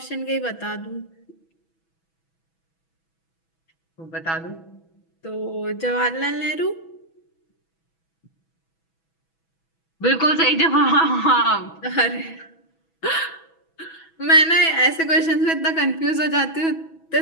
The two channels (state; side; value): late; right; 6.1 ms